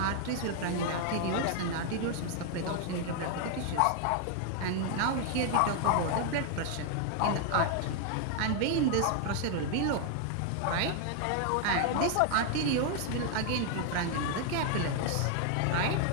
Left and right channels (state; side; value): different; both; correlation 0.00